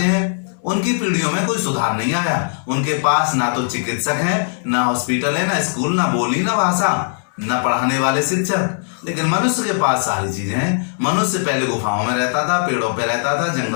हैं। उनकी पीढ़ियों में कोई सुधार नहीं आया। उनके पास ना तो चिकित्सक है, ना हॉस्पिटल है, ना स्कूल, ना बोली, ना भाषा, ना पढ़ाने वाले शिक्षक। लेकिन मनुष्य के पास सारी चीजें हैं। मनुष्य पहले गुफाओं में रहता था, पेड़ों पे रहता था,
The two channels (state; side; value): silent; right; 66 dB below the other